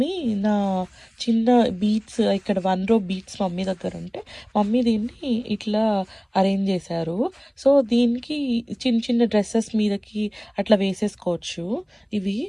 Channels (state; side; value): identical; both; correlation 1.00